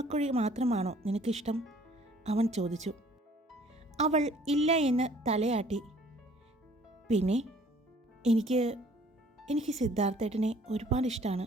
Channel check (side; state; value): both; normal; correlation 0.56